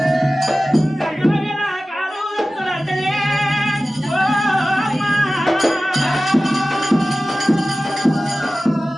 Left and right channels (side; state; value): both; normal; correlation 0.96